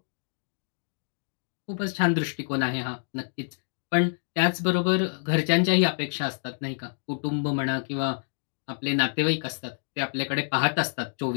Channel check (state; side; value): silent; right; digital silence